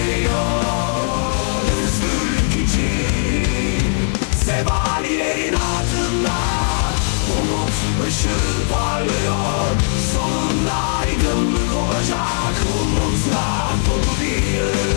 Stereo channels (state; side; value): silent; right; digital silence